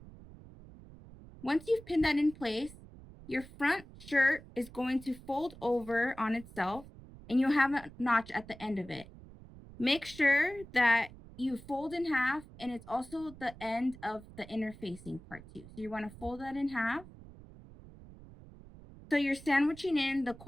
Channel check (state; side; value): noise; right; rumble, 18 dB below the sound